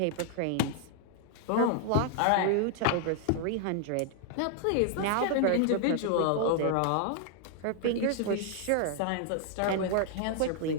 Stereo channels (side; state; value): both; different; correlation 0.00